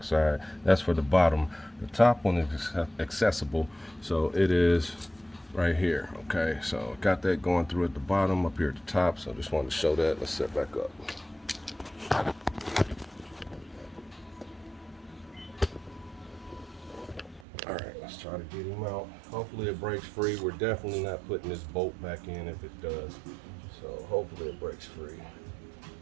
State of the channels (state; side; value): drops out; left; at 17.4 s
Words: side. That's for the bottom. The top one is accessible, so it is right here. Okay, so got that going through at the bottom, up here at the top. So I just wanted to show that. Let's set back up. All right, let's try to get him out. Hopefully it breaks free. We're definitely not putting this bolt back in if it does. So hopefully it breaks free.